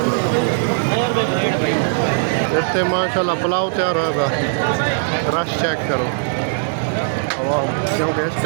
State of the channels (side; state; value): left; silent; digital silence